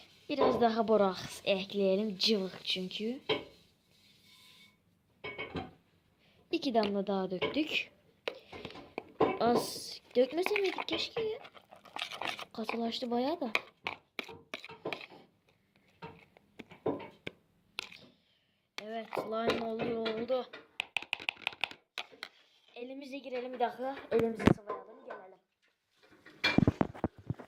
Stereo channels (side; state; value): both; identical; correlation 1.00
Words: Biraz daha boraks ekleyelim. Cıvık çünkü. 2 damla daha döktük. Az dökmese miydik keşke ya. Katılaştı bayağı da. Evet, slime oldu. Elimize girelim bir dakika. Elimizi sıvayalım, gelelim.